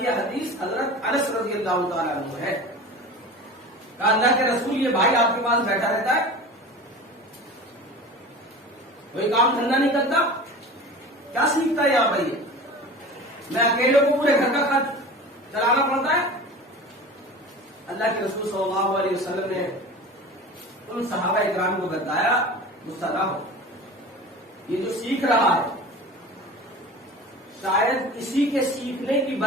حدیث حضرت انس رضی اللہ تعالیٰ عنہ ہے، کہا اللہ کے رسول یہ بھائی آپ کے پاس بیٹھا رہتا ہے، کوئی کام دھندا نہیں کرتا، کیا سیکھتا ہے یہاں بھائی؟ میں اکیلے کو پورے گھر کا خرچ چلانا پڑتا ہے۔ اللہ کے رسول صلی اللہ علیہ وسلم نے ان صحابہ اکرام کو بتایا، غصہ نہ ہو، یہ جو سیکھ رہا ہے شاید اسی کے سیکھنے کی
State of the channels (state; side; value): normal; both; correlation 0.36